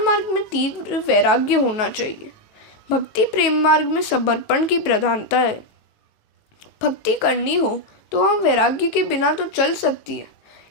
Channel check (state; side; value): late; right; 19 ms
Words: मार्ग में तीव्र वैराग्य होना चाहिए। भक्ति प्रेम मार्ग में समर्पण की प्रधानता है। भक्ति करनी हो तो वह वैराग्य के बिना तो चल सकती है,